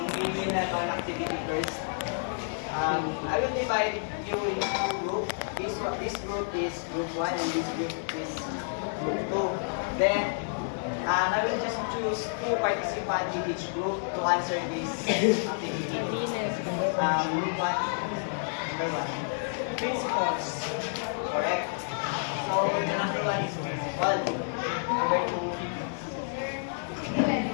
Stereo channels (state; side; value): silent; right; digital silence